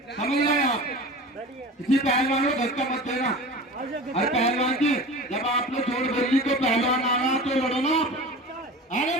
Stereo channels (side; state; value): both; normal; correlation 0.35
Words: आप, किसी पहलवान को धक्का मत देना। अरे पहलवान जी जब आपने जोड़ बोली तो पहलवान आ रहा तो लड़ो ना आप। अरे